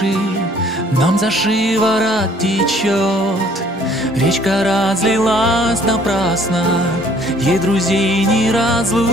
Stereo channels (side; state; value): both; normal; correlation 0.59